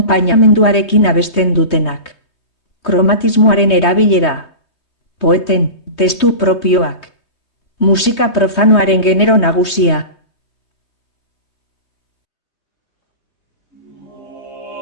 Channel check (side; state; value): right; late; 3.2 ms